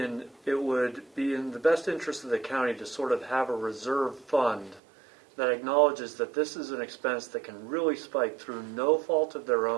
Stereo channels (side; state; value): left; drops out; at 4.8 s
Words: it would be in the best interest of the county to sort of have a reserve fund that acknowledges that this is an expense that can really spike through no fault of their